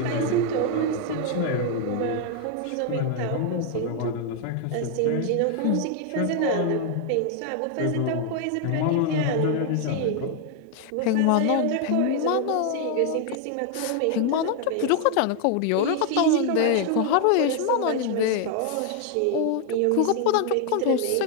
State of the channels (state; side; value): different; both; correlation 0.00